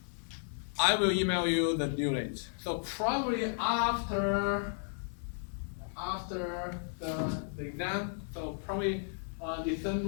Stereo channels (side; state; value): right; silent; digital silence